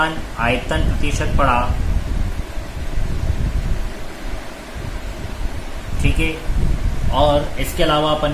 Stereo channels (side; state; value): both; identical; correlation 1.00